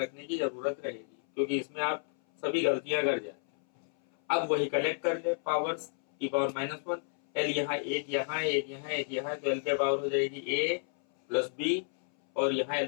की जरूरत रहेगी, क्योंकि इसमें आप सभी गलतियां कर जाते हैं। अब वही कलेक्ट कर ले पावर्स, टी पावर -1, एल यहाँ एक यहाँ एक यहाँ एक यहाँ, तो एल पे पावर हो जाएगी a प्लस बी, और यहाँ एल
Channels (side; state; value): right; silent; 57 dB below the other